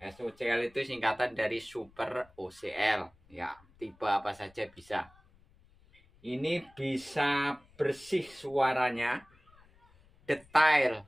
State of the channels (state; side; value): noise; left; rumble, 29 dB below the sound